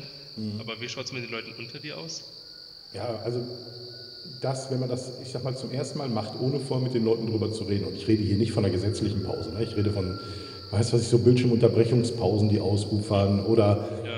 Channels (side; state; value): both; identical; correlation 1.00